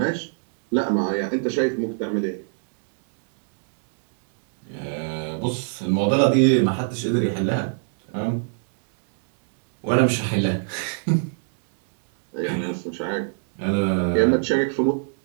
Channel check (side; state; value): left; silent; digital silence